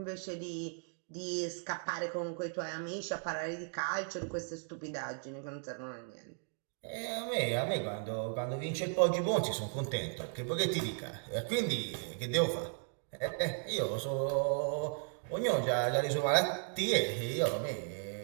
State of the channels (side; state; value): left; silent; 54 dB below the other